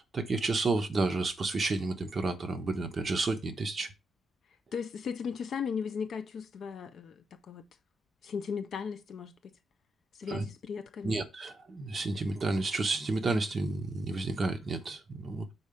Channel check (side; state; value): both; normal; correlation 0.83